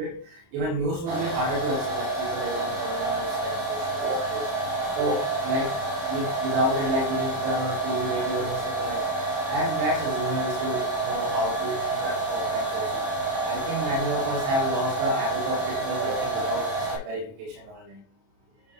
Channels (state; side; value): late; left; 30 ms